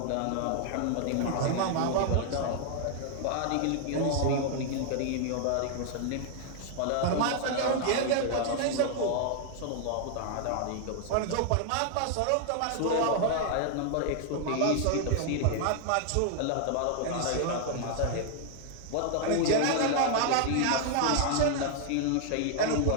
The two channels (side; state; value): both; different; correlation 0.00